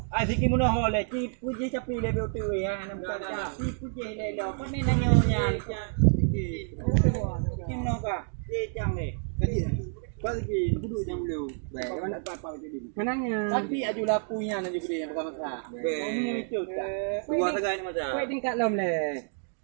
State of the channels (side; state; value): left; silent; 59 dB below the other